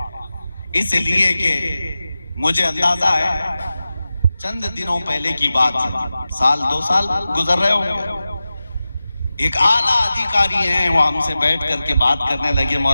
اس لیے کہ مجھے اندازہ ہے چند دنوں پہلے کی بات ہے، 1-2 سال گزر رہے ہوں گے، ایک اعلیٰ ادھیکاری ہیں وہ ہم سے بیٹھ کر کے بات کرنے لگے،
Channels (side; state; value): both; inverted; correlation -0.94